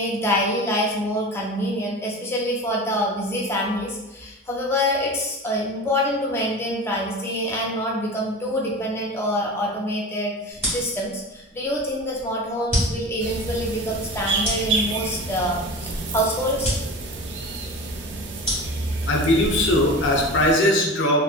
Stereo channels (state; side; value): normal; both; correlation 0.32